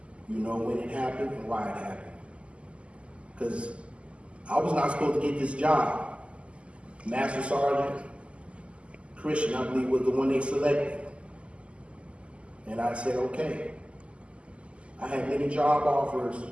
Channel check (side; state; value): left; late; 0.056 ms